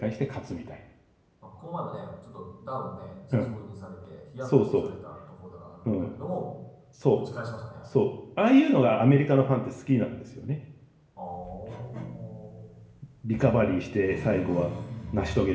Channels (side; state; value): both; identical; correlation 1.00